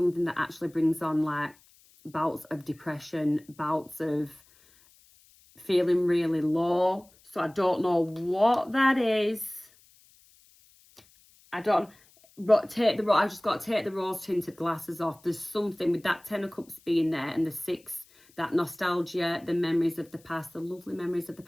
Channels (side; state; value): left; noise; hiss, 29 dB below the sound